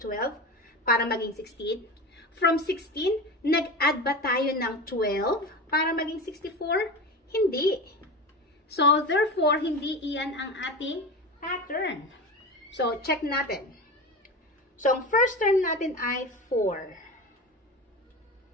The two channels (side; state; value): both; normal; correlation 0.27